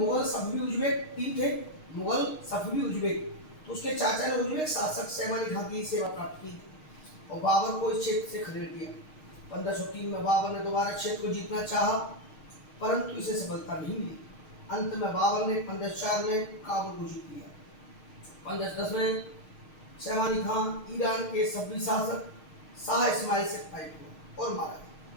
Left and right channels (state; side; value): late; right; 6.5 ms